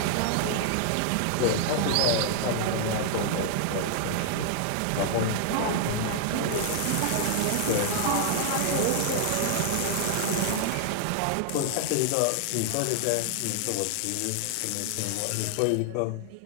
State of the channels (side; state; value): both; different; correlation 0.00